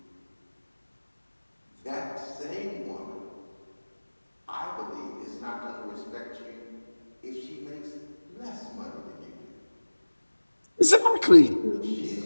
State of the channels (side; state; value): both; inverted; correlation -1.00